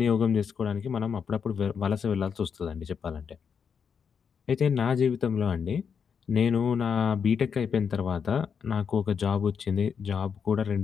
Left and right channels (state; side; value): quieter; right; 6.7 dB